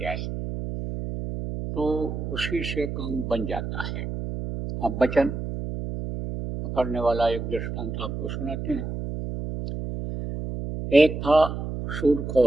तो उसी से काम बन जाता है। अब वचन पकड़ने वाला एक दृष्टांत आपको सुनाते हैं। एक था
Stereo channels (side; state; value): right; noise; hum, 5 dB below the sound